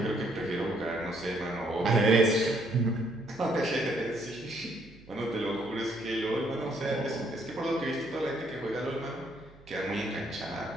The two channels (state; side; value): noise; right; hum, 23 dB below the sound